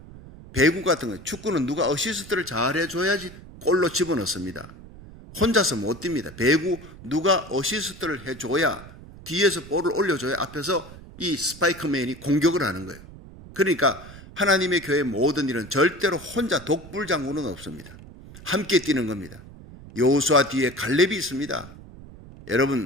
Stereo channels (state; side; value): noise; right; rumble, 17 dB below the sound